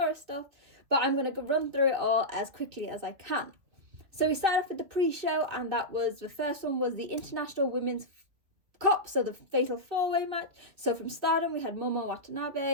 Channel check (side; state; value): left; late; 2.5 ms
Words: stuff. But I'm going to run through it all as quickly as I can. So we started off with the pre-show, and that was, the first one was the International Women's Cup, so the Fatal 4-Way match. So from Stardom, we had Momo